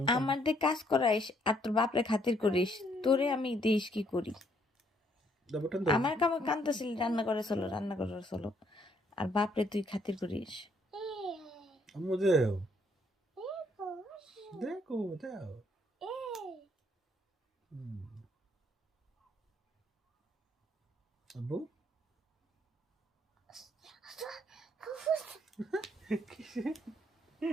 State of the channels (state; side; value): normal; both; correlation 0.69